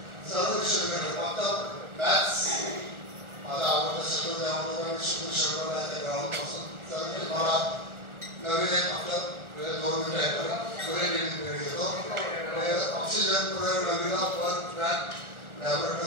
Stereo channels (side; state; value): left; late; 1.3 ms